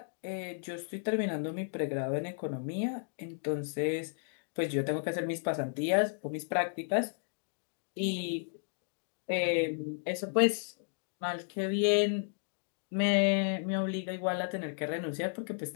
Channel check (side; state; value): right; silent; digital silence